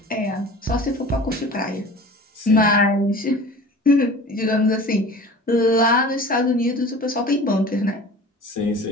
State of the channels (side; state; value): both; normal; correlation 0.40